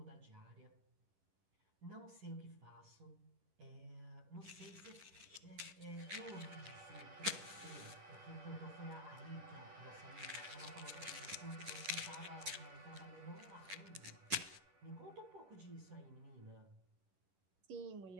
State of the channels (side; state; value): left; late; 11 ms